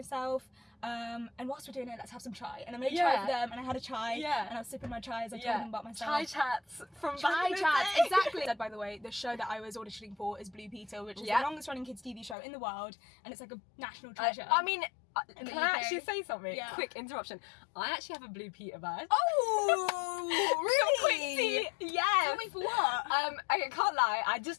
And whilst we're doing it, let's have some chai. And I made chai for them, and I had a chai. Yeah. And I was sipping my chai as I told them about myself. Chai chats from Chai back chats, exactly. By the way, the show that I was auditioning for is Blue Pizza, which is the longest running kids TV show in the world, and it's like a national treasure. I mean, can I UK. actually say something? Yeah. Quick interruption. I actually have a Blue Peter badge. Oh, really? Yeah. Tell me for what? I can't lie. I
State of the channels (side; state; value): right; drops out; at 12.4 s